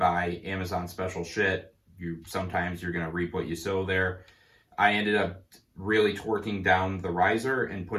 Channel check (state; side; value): identical; both; correlation 1.00